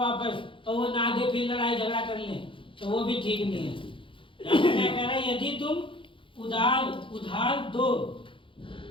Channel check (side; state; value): right; late; 0.25 ms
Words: और वो ना दे फिर लड़ाई झगड़ा कर ले, तो वो भी ठीक नहीं है। यहाँ पे क्या कह रहा है, यदि तुम उधार दो